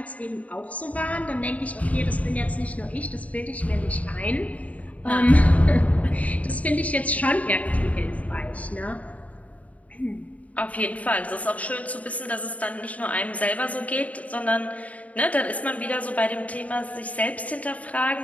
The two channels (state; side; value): late; right; 0.069 ms